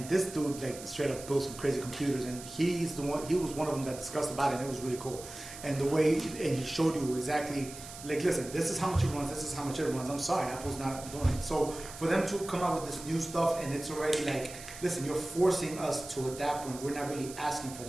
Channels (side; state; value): right; noise; hiss, 13 dB below the sound